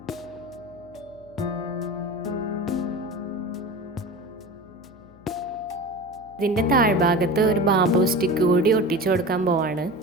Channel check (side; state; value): left; noise; hum, 24 dB below the sound